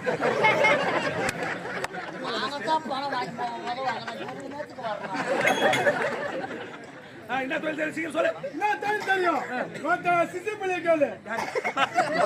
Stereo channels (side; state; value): both; identical; correlation 1.00